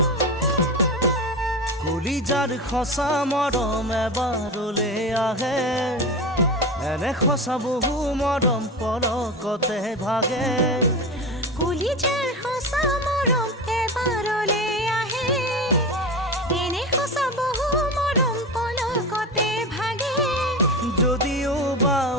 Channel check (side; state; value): both; normal; correlation 0.24